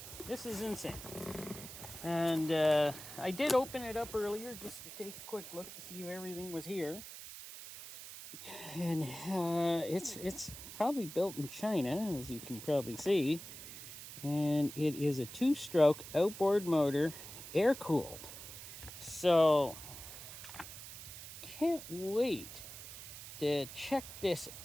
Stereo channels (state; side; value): noise; right; hiss, 12 dB below the sound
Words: This is insane. And I did open it up earlier just to take a quick look to see if everything was here. And it's probably built in China, as you can probably see. And it is a 2-stroke outboard motor, air-cooled. So, can't wait to check this